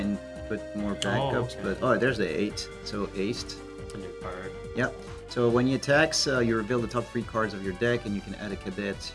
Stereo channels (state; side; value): identical; both; correlation 1.00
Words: put more backups, okay. but there's the 8, so aced. It's a new card. Yep. So when he attacks, you reveal the top 3 cards of your deck, and you can add a cadet,